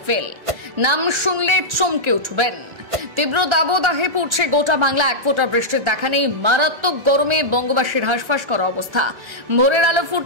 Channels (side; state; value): left; late; 1.3 ms